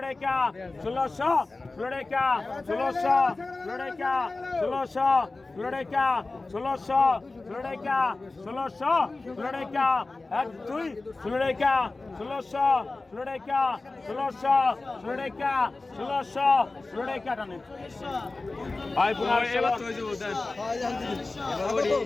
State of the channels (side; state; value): right; quieter; 3.4 dB